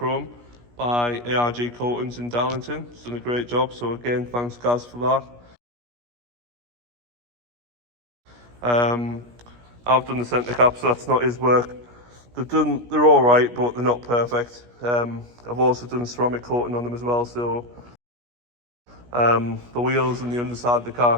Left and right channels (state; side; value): late; left; 17 ms